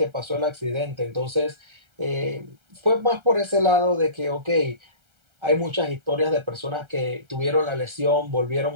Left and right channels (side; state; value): left; late; 1.3 ms